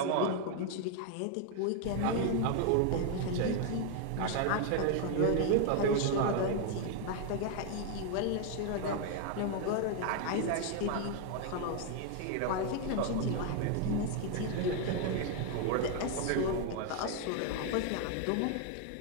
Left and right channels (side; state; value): both; different; correlation 0.00